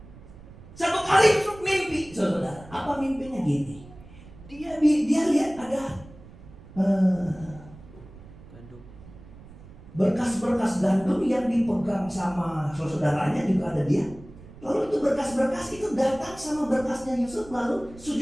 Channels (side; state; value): right; noise; rumble, 19 dB below the sound